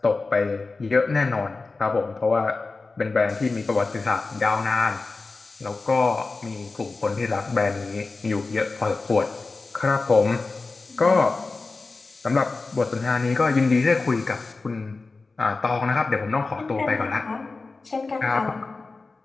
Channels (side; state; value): right; quieter; 3.8 dB